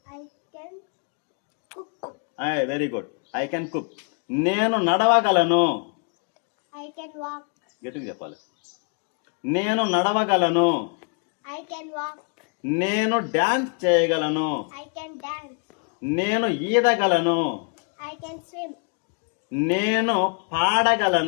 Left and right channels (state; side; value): quieter; right; 38.9 dB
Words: I can cook. Very good. I can cook. నేను నడవగలను. I can walk. గట్టిగా చెప్పాలి. నేను నడవగలను. I can walk. నేను డాన్స్ చేయగలను. I can dance. నేను ఈదగలను. I can swim. నేను